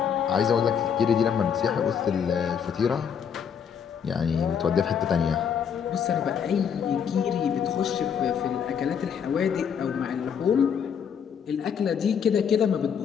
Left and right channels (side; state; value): right; quieter; 7.5 dB